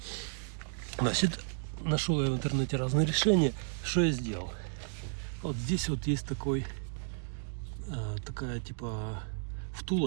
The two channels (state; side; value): silent; left; digital silence